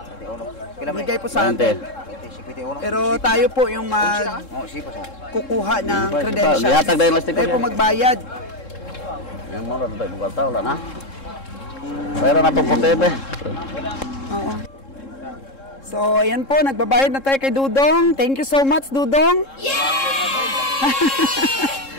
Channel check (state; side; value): late; right; 3.7 ms